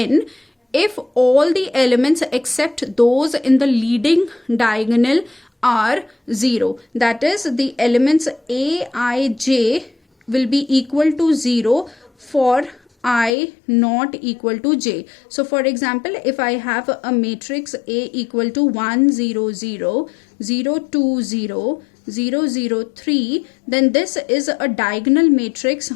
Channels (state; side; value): drops out; right; at 13.3 s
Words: if all the elements except those in the leading diagonal are 0. That is, the elements Aij will be equal to 0 for I not equal to j. So for example, if I have a matrix A equal to 1 0 0 0 2 0 0 0 3, then this is a diagonal matrix